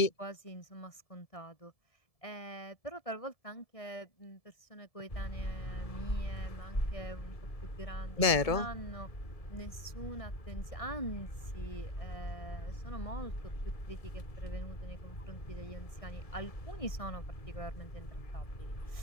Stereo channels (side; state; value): right; late; 1.7 ms